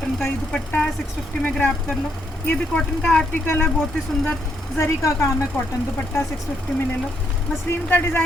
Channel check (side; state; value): both; normal; correlation 0.75